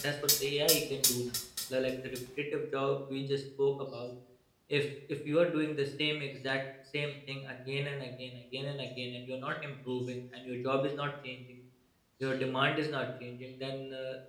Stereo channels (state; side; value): identical; both; correlation 1.00